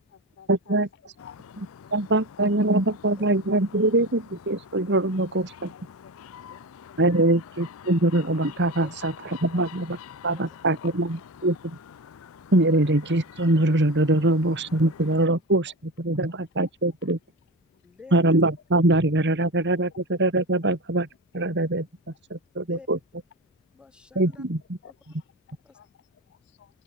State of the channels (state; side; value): normal; both; correlation 0.26